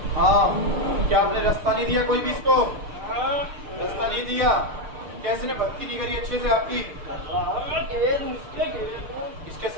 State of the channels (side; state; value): left; late; 6.6 ms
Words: हाँ क्या आपने रास्ता नहीं दिया कोई भी इसको? रास्ता नहीं दिया? कैसे ने भक्ति नहीं करी अच्छे से आपकी? इसके